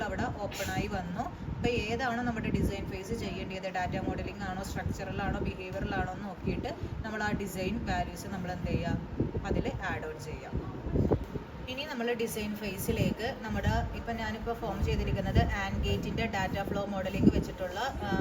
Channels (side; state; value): both; identical; correlation 1.00